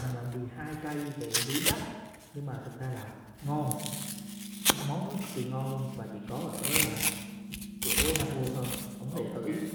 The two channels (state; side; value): identical; both; correlation 1.00